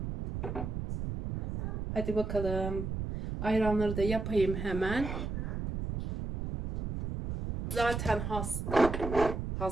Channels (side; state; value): right; noise; rumble, 4 dB below the sound